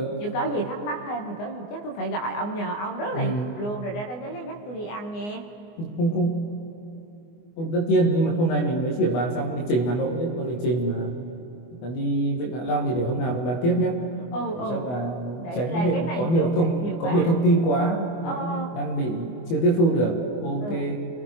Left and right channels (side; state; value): right; late; 24 ms